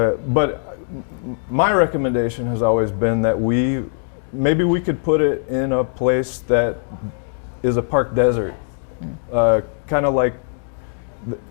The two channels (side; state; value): right; silent; digital silence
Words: my recommendation has always been that maybe we could put it in a place that is a park desert, kind of like